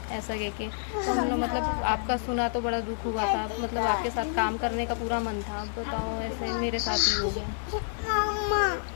ऐसा कह के। तो हम लोग मतलब आपका सुना तो बड़ा दुख हुआ था, मतलब आपके साथ काम करने का पूरा मन था। अब बताओ ऐसे मेरे साथ ही हो गया।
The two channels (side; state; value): right; silent; 59 dB below the other